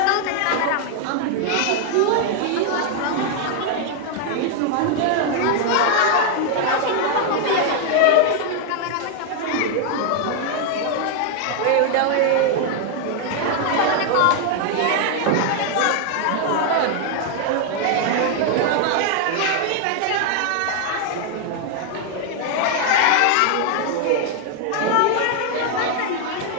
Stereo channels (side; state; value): both; different; correlation 0.00